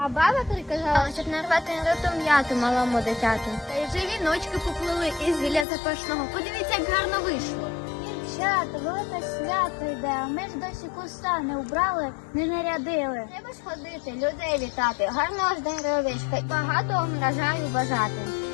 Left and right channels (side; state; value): right; drops out; at 5.7 s